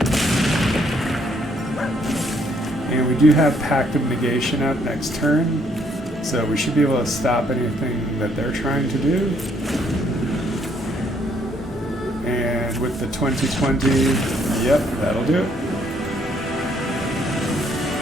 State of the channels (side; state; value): both; normal; correlation 0.69